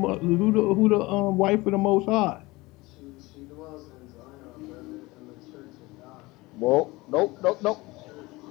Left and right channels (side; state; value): right; quieter; 21.7 dB